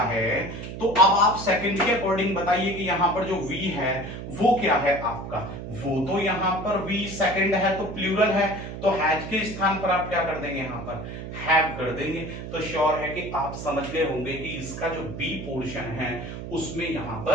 तो अब आप सेकंड के अकॉर्डिंग बताइए कि यहां पर जो वी है वो क्या है आपका, वो तो यहां पर वी सेकंड है तो प्लूरल है, तो हैज के स्थान पर आप क्या कर देंगे, यहां पर हैव कर देंगे। तो श्योर है कि आप समझ गए होंगे कि इसका जो बी पोर्शन है उसमें यहां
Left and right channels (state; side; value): noise; right; hum, 9 dB below the sound